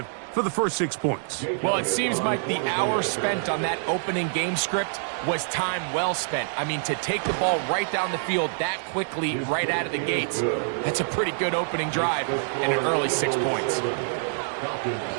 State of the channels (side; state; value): left; silent; digital silence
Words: for the first 6 points. Well, it seems like the hour spent on that opening game script was time well spent. I mean, to take the ball right down the field that quickly right out of the gates, that's a pretty good opening drive and an early 6 points.